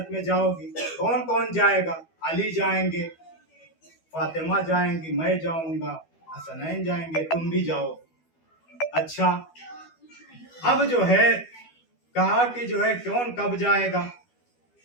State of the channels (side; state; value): right; late; 12 ms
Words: میں جاؤ گی، کون کون جائے گا؟ علی جائیں گے، فاطمہ جائیں گی، میں جاؤں گا، حسنین جائیں گے، تم بھی جاؤ۔ اچھا اب جو ہے کہا کہ جو ہے کون کب جائے گا؟